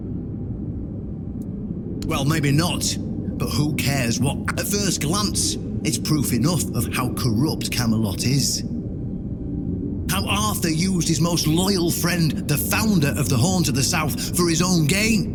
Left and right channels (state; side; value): identical; both; correlation 1.00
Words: Well, maybe not. But who cares what? At first glance, it's proof enough of how corrupt Camelot is. How Arthur used his most loyal friend, the founder of the Horns of the South, for his own